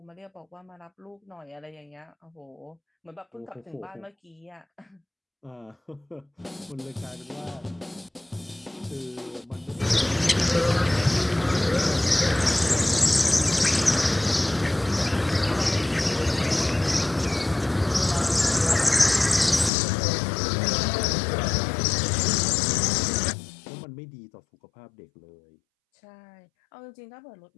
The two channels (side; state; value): right; drops out; at 19.7 s